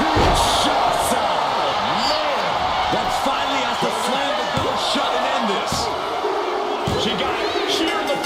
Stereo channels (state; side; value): identical; both; correlation 1.00